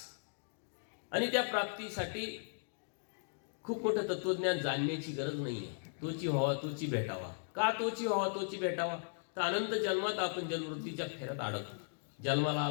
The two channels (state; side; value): silent; right; digital silence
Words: आणि त्या प्राप्तीसाठी खूप मोठं तत्वज्ञान जाणण्याची गरज नाहीये. तोची व्हावा तोची भेटावा. का तोची व्हावा तोची भेटावा? तर अनंत जन्मात आपण जन्मवृत्तीच्या फेऱ्यात अडकतो. जन्माला